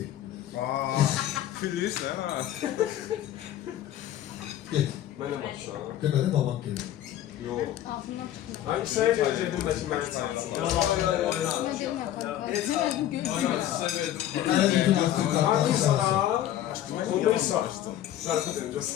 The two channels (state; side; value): quieter; right; 12.2 dB